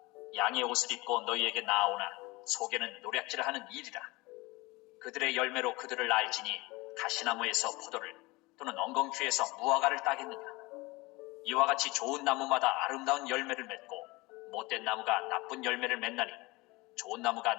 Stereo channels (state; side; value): quieter; right; 23.0 dB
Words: 양의 옷을 입고 너희에게 나아오나 속에는 노략질을 하는 일이라. 그들의 열매로 그들을 알지니 가시나무에서 포도를 또는 엉겅퀴에서 무화과를 따겠느냐. 이와 같이 좋은 나무마다 아름다운 열매를 맺고 못된 나무가 나쁜 열매를 맺나니 좋은 나무가